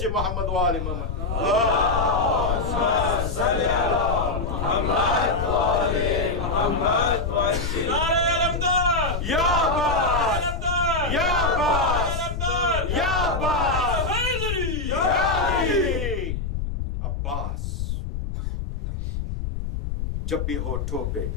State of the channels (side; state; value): left; noise; rumble, 3 dB below the sound